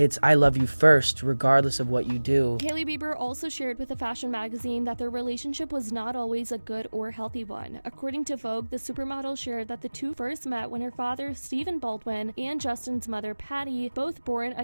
I love you first, regardless of what you do. Hailey Bieber also shared with a fashion magazine that their relationship was not always a good or healthy one. According to Vogue, the supermodel shared that the two first met when her father, Stephen Baldwin, and Justin's mother, Patty, both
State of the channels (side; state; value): both; inverted; correlation -1.00